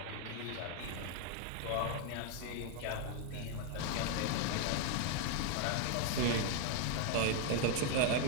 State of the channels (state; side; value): different; both; correlation 0.01